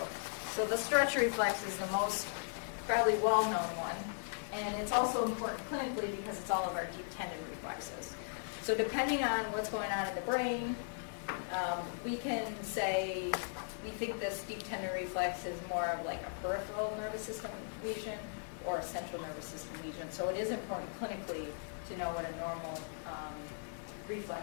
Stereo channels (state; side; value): silent; right; digital silence